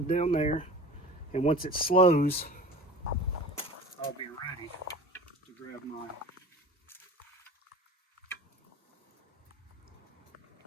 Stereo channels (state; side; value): normal; both; correlation 0.39